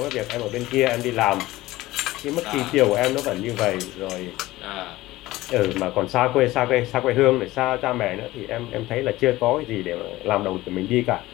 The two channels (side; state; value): right; quieter; 17.7 dB